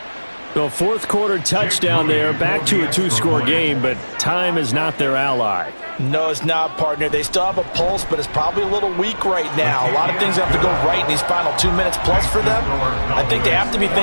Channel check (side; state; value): both; inverted; correlation -1.00